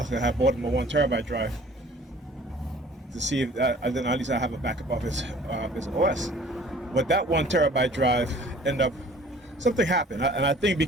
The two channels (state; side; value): normal; both; correlation 0.51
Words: I have bought him a 1 terabyte drive to see if then at least I have a backup of his OS. But that 1 terabyte drive something happened. And I think